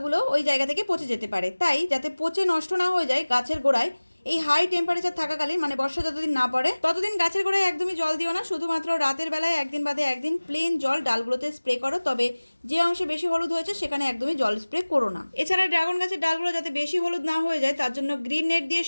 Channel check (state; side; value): inverted; both; correlation -1.00